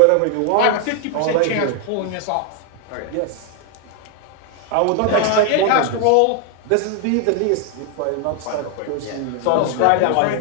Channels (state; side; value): different; both; correlation 0.00